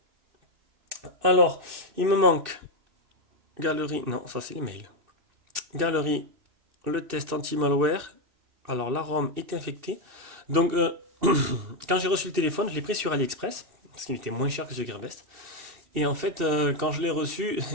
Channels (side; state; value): left; late; 2.7 ms